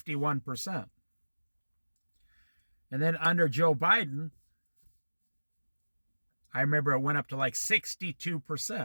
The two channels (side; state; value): both; inverted; correlation -1.00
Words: And then under Joe Biden, I remember it went up to like